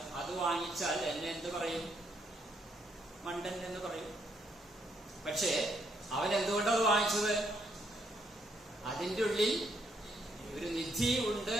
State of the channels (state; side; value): normal; both; correlation 0.73